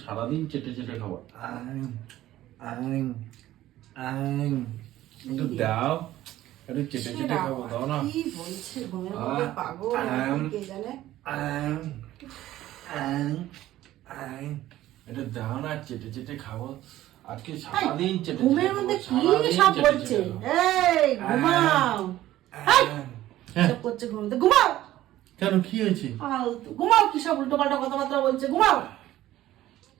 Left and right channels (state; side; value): quieter; left; 14.5 dB